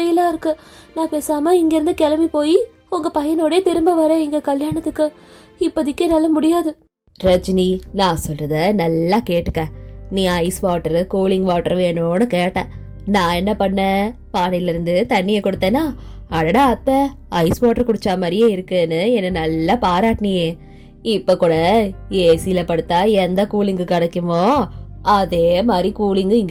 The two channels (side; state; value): both; identical; correlation 1.00